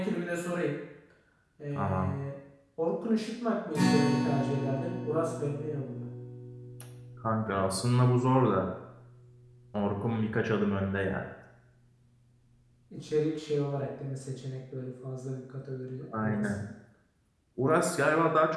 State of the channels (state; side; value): identical; both; correlation 1.00